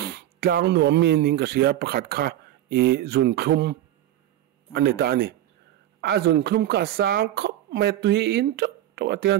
tlang nuam mi ning ka sia pakhat kha zun thum ani ta ni a zun thum ka sang khop me tui in to atian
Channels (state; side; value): quieter; left; 13.1 dB